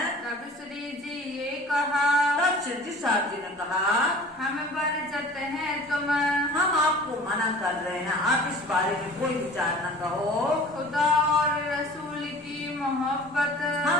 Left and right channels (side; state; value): both; normal; correlation 0.44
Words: तब श्री जी ये कहा। तब श्री जी साहब जी ने कहा, हम बरजत हैं तुम। हम आपको मना कर रहे हैं, आप इस बारे में कोई विचार न कहो। खुदा और रसूल की मोहब्बत।